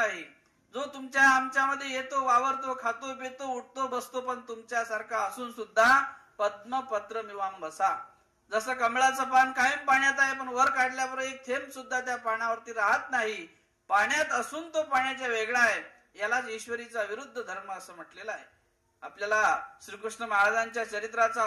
जो तुमच्या आमच्यामध्ये येतो, वावरतो, खातो, पितो, उठतो, बसतो, पण तुमच्यासारखा असून सुद्धा पद्मपत्र मिवाम बसा. जसं कमळाचं पान कायम पाण्यात आहे, पण वर काढल्यावर एक थेंब सुद्धा त्या पाण्यावरती राहत नाही. पाण्यात असून तो पाण्याच्या वेगळा आहे. यालाच ईश्वरीचा विरुद्ध धर्म असं म्हटलेला आहे. आपल्याला श्रीकृष्ण महाराजांच्या चरित्राचं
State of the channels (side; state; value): both; identical; correlation 1.00